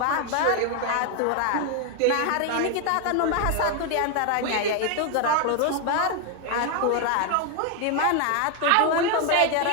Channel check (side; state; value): both; different; correlation 0.01